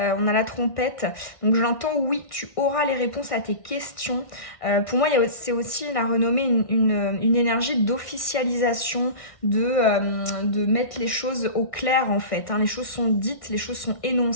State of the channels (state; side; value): late; right; 1.6 ms